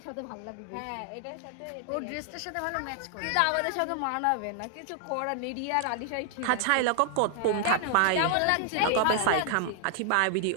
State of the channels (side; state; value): both; different; correlation 0.00